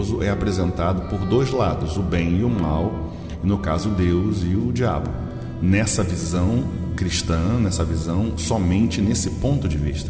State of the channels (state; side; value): identical; both; correlation 1.00